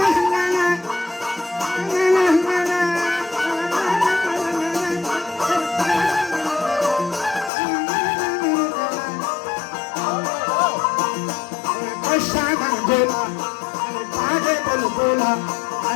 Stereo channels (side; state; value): right; drops out; at 7.5 s